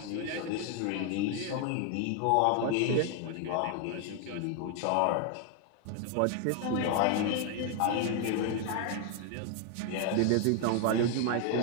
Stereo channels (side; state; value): both; different; correlation 0.00